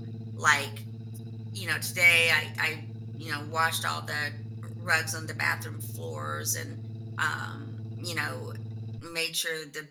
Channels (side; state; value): both; identical; correlation 1.00